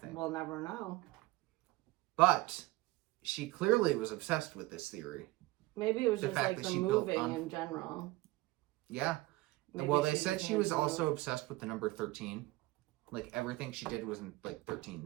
We'll never know. But she clearly was obsessed with this theory. Maybe it was The just fact like that the she built moving on- in general. Yeah. Maybe Well, they just said she had was to- also obsessed with the number 13. Like everything she did was in like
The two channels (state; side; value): quieter; left; 19.9 dB